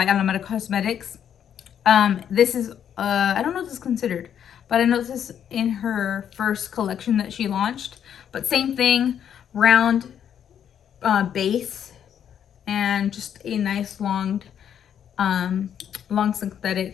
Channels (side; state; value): right; quieter; 9.0 dB